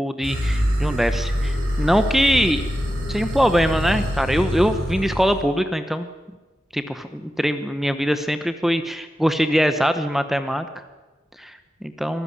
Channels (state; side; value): normal; both; correlation 0.91